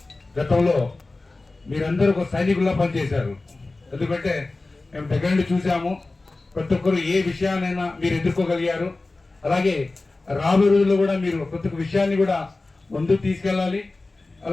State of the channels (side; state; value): right; quieter; 3.3 dB